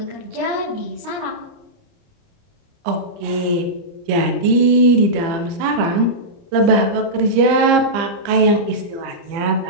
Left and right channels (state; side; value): late; left; 30 ms